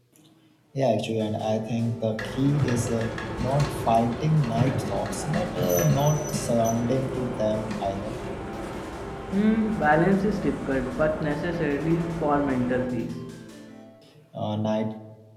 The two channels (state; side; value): identical; both; correlation 1.00